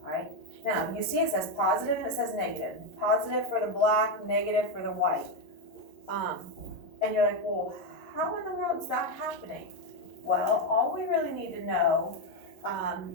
All right? Now, you see it says positive and it says negative. Positive for the black, negative for the white. And you're like, well, how in the world is that happening? Well, all we really need to know,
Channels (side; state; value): right; late; 11 ms